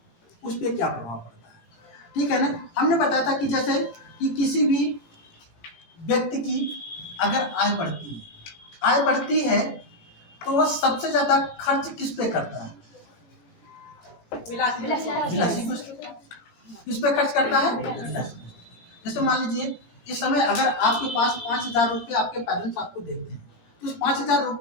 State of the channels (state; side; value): late; right; 18 ms